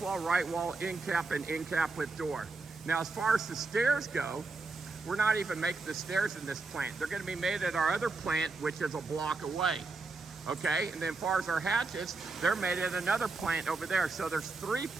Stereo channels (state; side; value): quieter; left; 3.8 dB